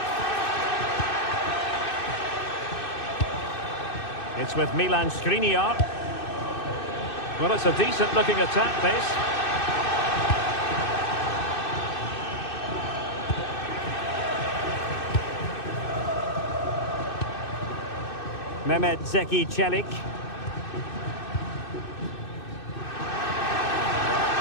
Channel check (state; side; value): late; right; 2.6 ms